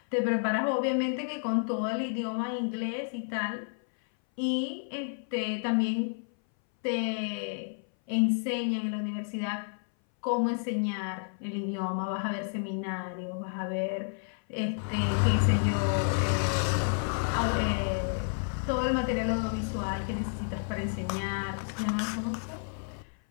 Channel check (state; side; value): silent; right; 57 dB below the other